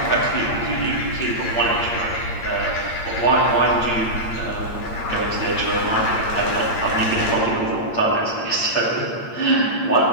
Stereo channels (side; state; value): right; late; 8.7 ms